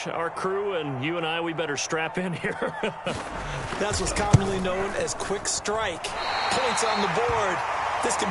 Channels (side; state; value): both; identical; correlation 1.00